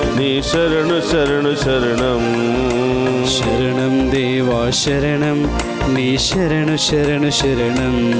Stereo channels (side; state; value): both; identical; correlation 1.00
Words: నీ శరణు శరణు శరణం. శరణం దేవా శరణం, నీ శరణు శరణు శరణం.